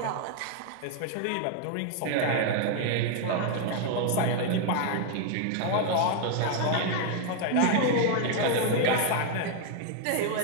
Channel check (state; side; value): different; both; correlation 0.00